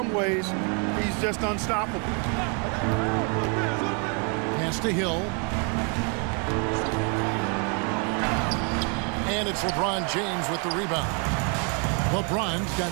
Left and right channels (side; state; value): left; quieter; 35.7 dB